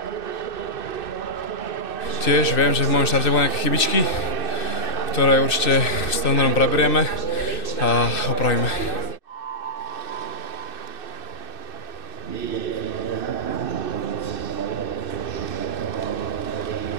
Tiež viem, že v mojom štarte boli nejaké chybičky, ktoré určite s trénerom preberieme a opravíme.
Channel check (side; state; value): right; late; 2.6 ms